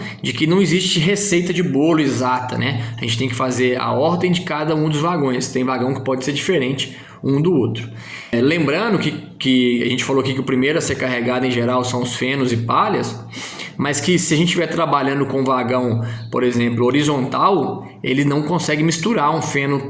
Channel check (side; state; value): both; identical; correlation 1.00